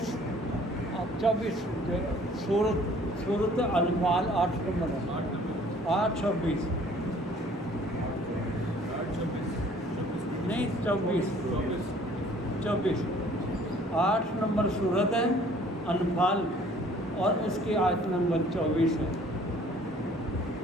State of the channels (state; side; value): normal; both; correlation 0.55